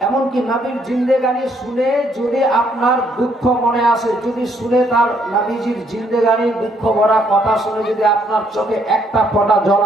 এমনকি নবীর জিন্দেগানি শুনে যদি আপনার দুঃখ মনে আসে, যদি শুনে তার নবীজির জিন্দেগানি দুঃখ ভরা কথা শুনে যদি আপনার চোখে একটা ফোঁটা জল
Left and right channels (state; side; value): normal; both; correlation 0.70